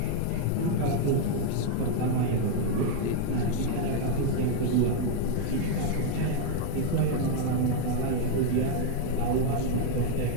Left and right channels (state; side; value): different; both; correlation 0.00